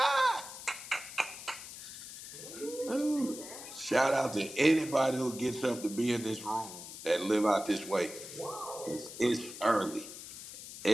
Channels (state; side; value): noise; left; hiss, 12 dB below the sound